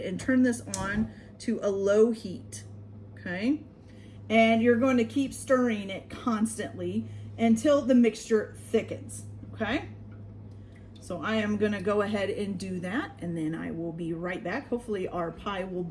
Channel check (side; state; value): both; identical; correlation 1.00